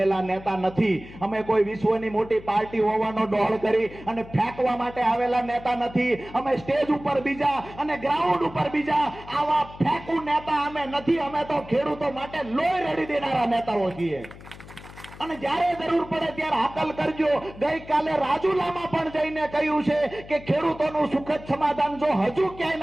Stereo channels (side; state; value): left; noise; hum, 17 dB below the sound